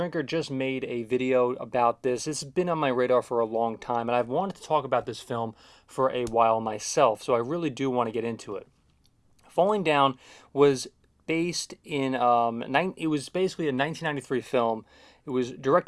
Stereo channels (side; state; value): both; identical; correlation 1.00